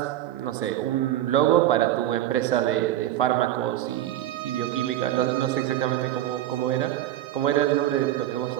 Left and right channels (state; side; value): quieter; left; 13.1 dB